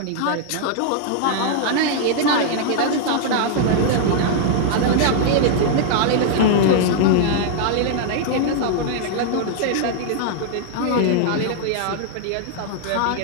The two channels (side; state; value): both; different; correlation -0.01